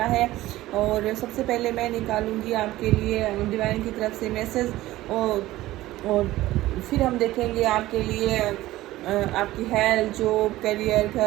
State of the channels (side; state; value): left; quieter; 16.5 dB